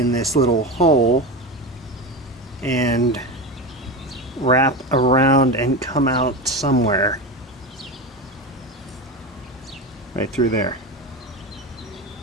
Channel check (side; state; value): both; normal; correlation 0.21